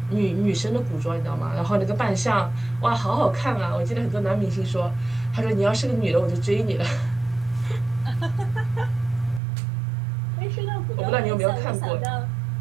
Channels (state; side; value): drops out; left; at 9.4 s